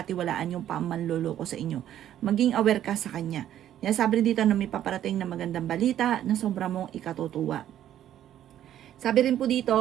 yung manloloko sa inyo. Maging aware ka sa kanya. Kaya sabi rin dito na may paparating na magandang balita na sobrang mong ikatutuwa. Sabi rin po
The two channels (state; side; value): quieter; left; 11.4 dB